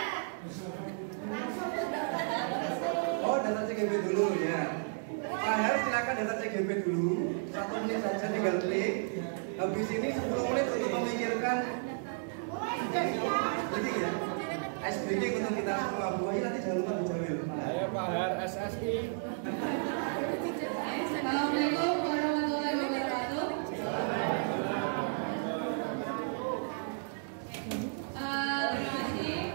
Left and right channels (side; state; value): left; silent; digital silence